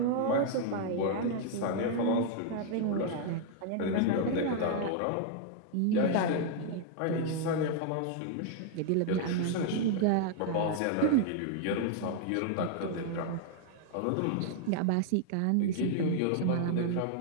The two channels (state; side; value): different; both; correlation 0.00